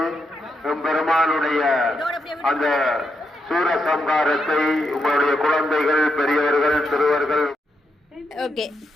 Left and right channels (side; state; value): both; normal; correlation 0.82